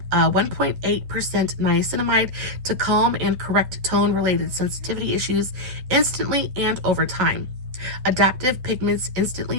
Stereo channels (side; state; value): left; late; 10 ms